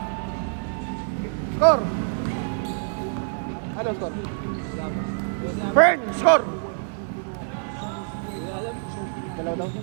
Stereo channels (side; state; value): left; silent; digital silence